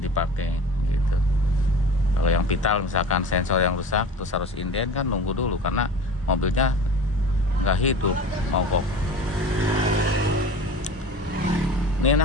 gitu. Kalau yang vital misalkan sensor yang rusak terus harus inden kan, nunggu dulu karena mobilnya nggak hidup, mogok. Ini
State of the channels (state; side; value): normal; both; correlation 0.37